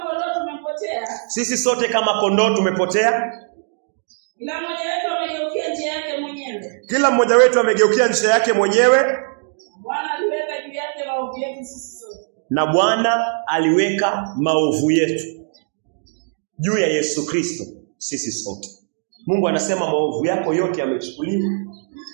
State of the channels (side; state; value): left; silent; 66 dB below the other